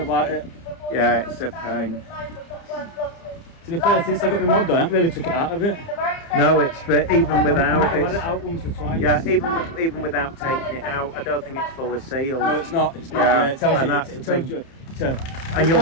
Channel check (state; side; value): late; right; 30 ms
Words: it. Yeah, it's a pain. To be fair, since I got my mod done, I haven't really took it out of it. No, it's even without I've had it. it out once or twice. Yeah, even without taking it out, I don't think it's fully sealed. No, it's not. It's not. Yeah, Yeah, it tells and you. that's It the tells thing. you. And